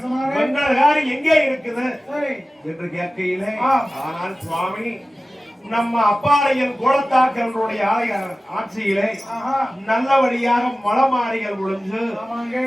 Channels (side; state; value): both; normal; correlation 0.96